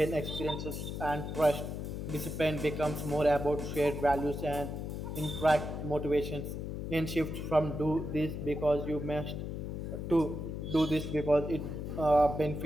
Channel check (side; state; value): left; noise; hum, 5 dB below the sound